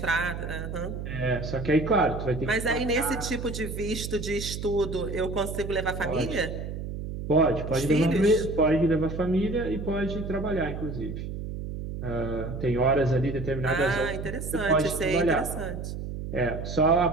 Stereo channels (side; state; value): right; noise; hum, 6 dB below the sound